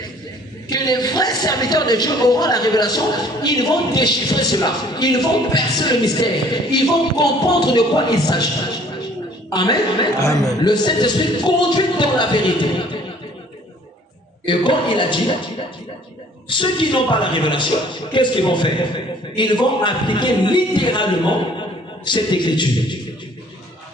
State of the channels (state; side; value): normal; both; correlation 0.55